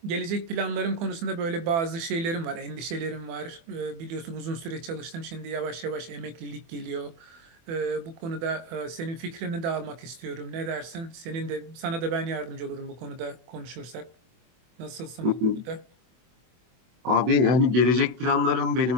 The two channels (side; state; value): left; late; 24 ms